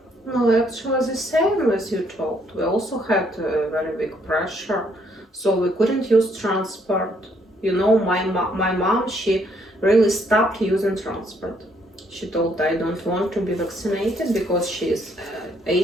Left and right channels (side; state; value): both; normal; correlation 0.69